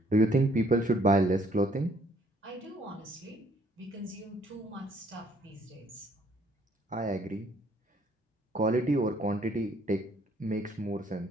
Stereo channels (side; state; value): both; normal; correlation 0.64